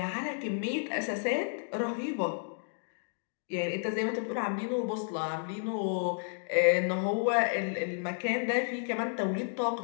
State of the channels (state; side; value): silent; right; digital silence